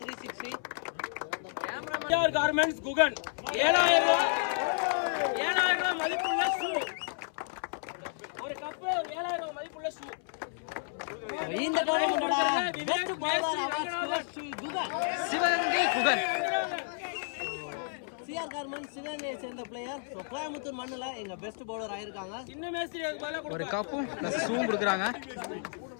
360 கார்மெண்ட்ஸ் குகன் 7000 ரூபாய் மதிப்புள்ள ஷூ, ஒரு கப்பு 7000 ரூபாய் மதிப்புள்ள ஷூ. இந்த டோர்னமெண்டோட best bowler award Sivagangai Guhan. CR Garments சிவகங்கையை சேர்ந்த பிளேயர். ஸோ கோயம்புத்தூர் மண்ணில் எங்க பெஸ்ட் பவுலர் ஆயிருக்காங்க. சின்ன மேஸ்திரி ஒரு கப்பும் பிளஸ் ஷூவும் கொடுக்குறாங்க.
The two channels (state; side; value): silent; right; 57 dB below the other